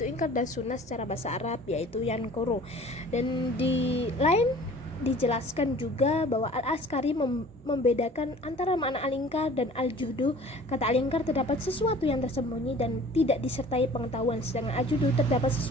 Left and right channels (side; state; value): both; normal; correlation 0.47